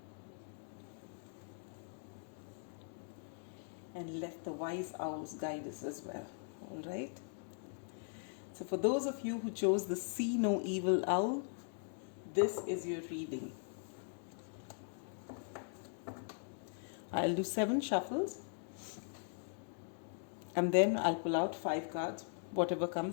And let the wise owls guide us as well. All right. So for those of you who chose the See No Evil Owl, this is your reading. I'll do 7 shuffles, and then I'll pull out 5 cards, whatever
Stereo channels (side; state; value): right; silent; digital silence